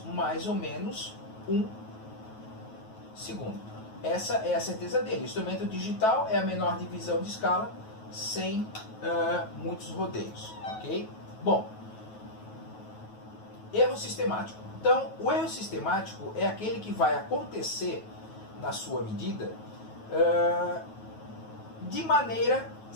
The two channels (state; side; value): late; right; 9.3 ms